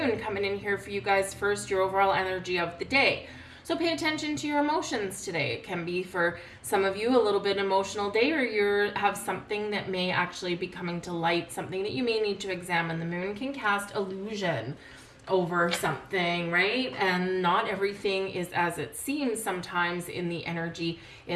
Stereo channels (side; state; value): both; identical; correlation 1.00